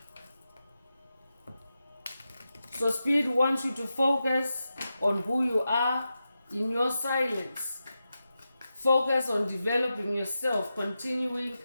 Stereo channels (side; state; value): both; inverted; correlation -0.90